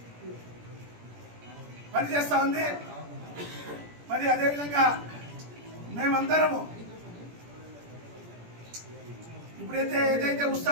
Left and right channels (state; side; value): late; left; 17 ms